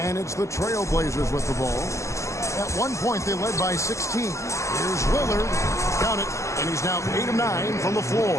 it's the Trailblazers with the ball. At one point, they led by 16. Here's Lillard. Count it. And he's now 8 of 9 from the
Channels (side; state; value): right; late; 0.14 ms